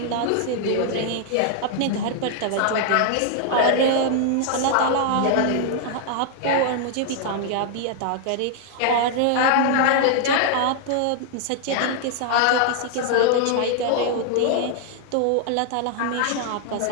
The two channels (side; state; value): both; different; correlation 0.00